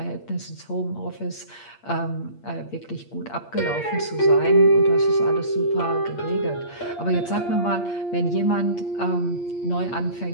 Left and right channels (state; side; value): late; right; 8.6 ms